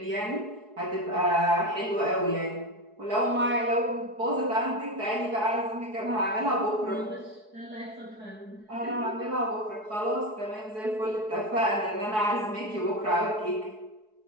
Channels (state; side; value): late; left; 4.7 ms